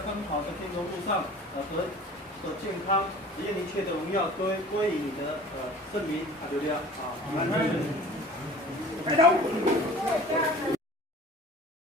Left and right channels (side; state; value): both; normal; correlation 0.44